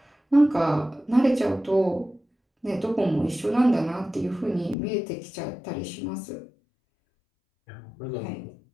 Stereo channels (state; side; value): drops out; right; at 4.8 s